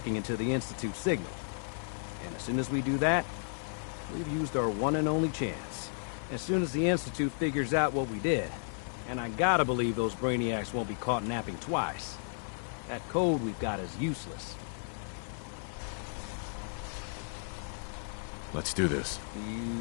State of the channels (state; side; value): silent; right; 55 dB below the other